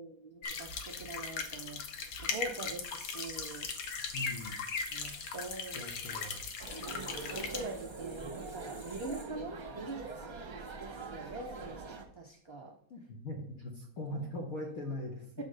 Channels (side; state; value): right; late; 4.2 ms